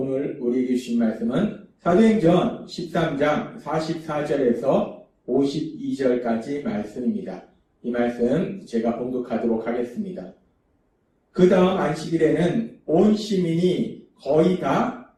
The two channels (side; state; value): both; identical; correlation 1.00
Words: 우리에게 주신 말씀은 사도행전 13장 44절에서 52절까지 말씀입니다. 이 말씀 제가 봉독하도록 하겠습니다. 그 다음 안식일에는 온 시민이 거의 다